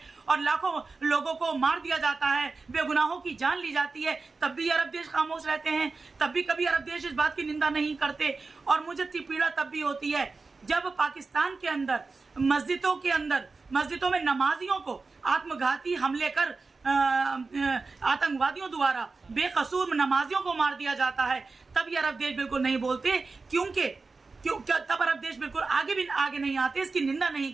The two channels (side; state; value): left; quieter; 4.0 dB